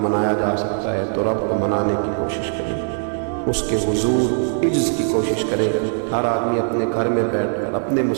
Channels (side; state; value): left; silent; digital silence